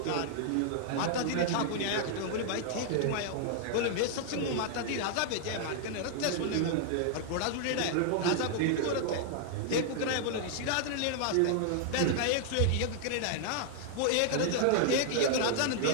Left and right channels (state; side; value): different; both; correlation -0.01